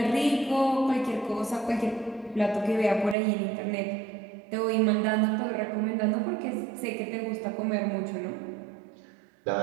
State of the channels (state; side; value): drops out; left; at 3.2 s